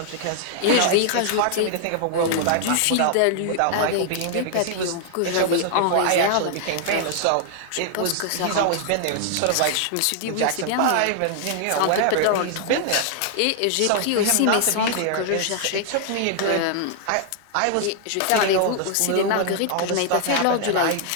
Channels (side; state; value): both; different; correlation 0.00